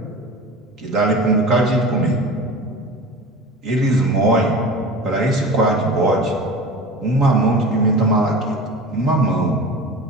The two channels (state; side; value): normal; both; correlation 0.35